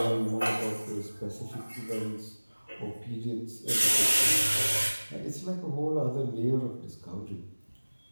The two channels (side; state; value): both; inverted; correlation -1.00